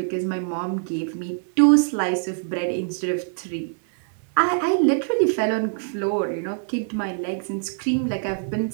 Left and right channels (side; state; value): left; silent; digital silence